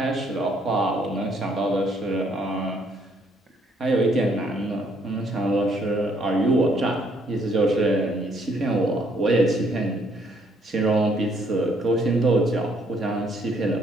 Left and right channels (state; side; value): normal; both; correlation 0.68